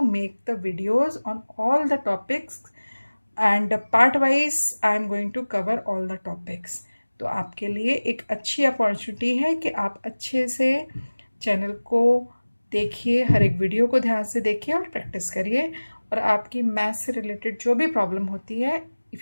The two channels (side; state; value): both; inverted; correlation -1.00